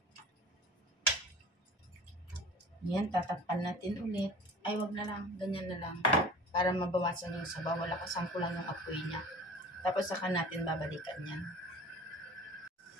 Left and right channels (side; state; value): both; normal; correlation 0.43